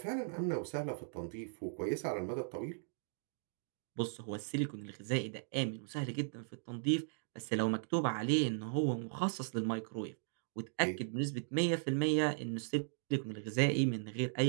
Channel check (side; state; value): left; silent; digital silence